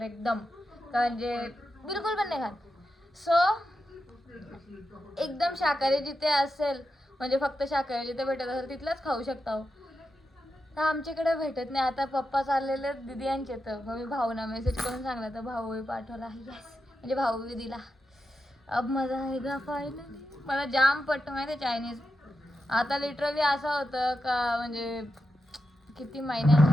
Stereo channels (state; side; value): normal; both; correlation 0.88